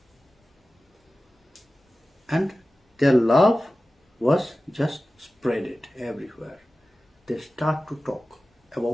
And their love was just spread it everywhere. They start to talk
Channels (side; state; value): both; normal; correlation 0.96